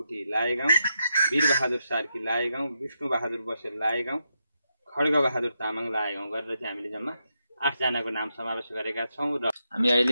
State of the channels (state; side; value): inverted; both; correlation -0.84